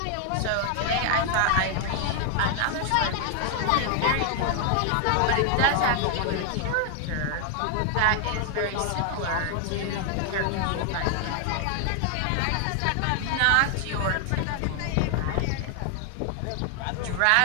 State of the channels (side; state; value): both; different; correlation 0.00